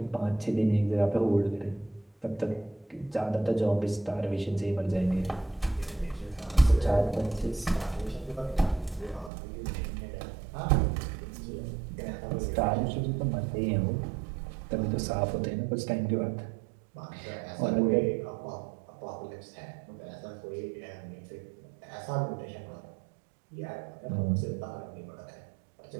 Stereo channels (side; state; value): left; drops out; at 9.3 s